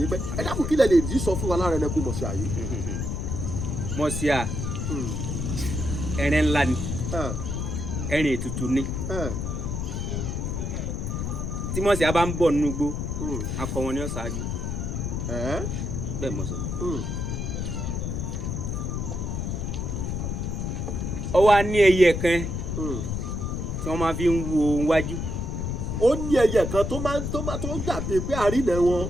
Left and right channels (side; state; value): left; noise; rumble, 3 dB below the sound